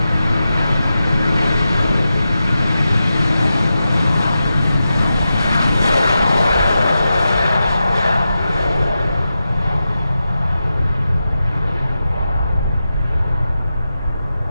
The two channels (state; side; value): inverted; both; correlation -0.90